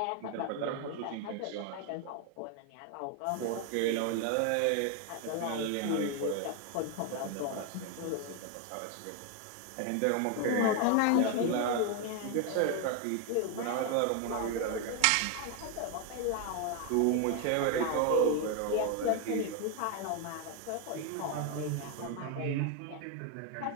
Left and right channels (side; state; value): both; different; correlation 0.01